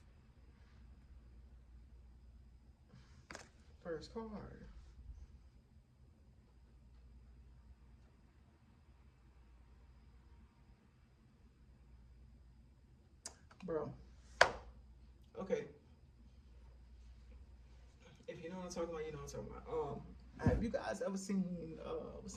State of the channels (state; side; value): identical; both; correlation 1.00